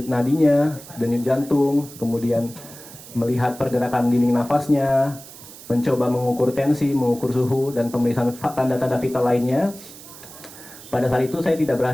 nadinya, denyut jantung, kemudian melihat pergerakan dinding nafasnya, mencoba mengukur tensi, mengukur suhu, dan pemeriksaan tanda-tanda vital lainnya. Pada saat itu saya tidak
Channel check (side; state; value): right; noise; hiss, 17 dB below the sound